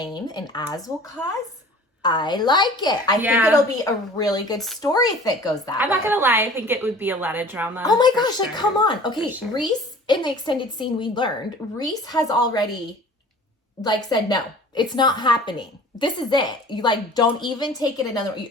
and Az will cause, I like it. I think it'll be a really good story if it goes that way. I'm not gonna lie, I think it would be a lot of drama. Oh my gosh, like come on. Okay, Reese, in the extended scene we learned, Reese has already said no. It's not happening. This is it. You don't even take it another,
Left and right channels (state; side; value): normal; both; correlation 0.45